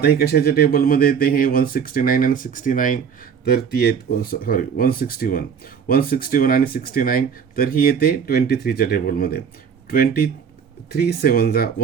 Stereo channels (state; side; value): quieter; left; 7.0 dB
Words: ही कशाच्या टेबलमध्ये येते, हे 169 आणि 69, तर ती येते 161 आणि 69, तर ही येते 23च्या टेबलमध्ये. 23 7 जा